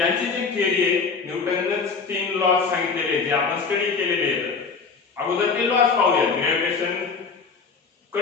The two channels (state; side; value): quieter; right; 5.0 dB